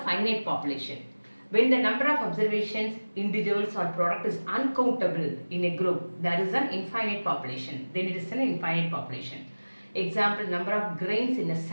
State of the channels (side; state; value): both; inverted; correlation -1.00